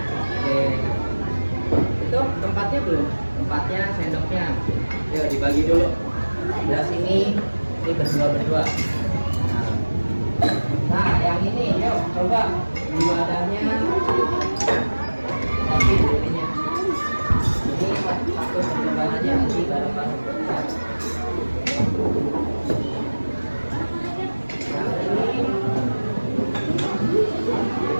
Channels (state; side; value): inverted; both; correlation -1.00